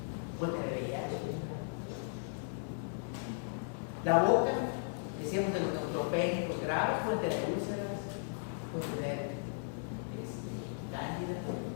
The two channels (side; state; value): right; silent; digital silence